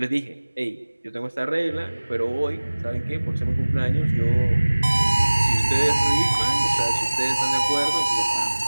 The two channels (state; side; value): inverted; both; correlation -1.00